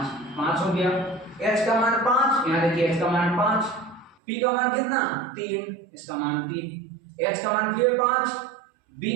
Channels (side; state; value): left; drops out; at 4.2 s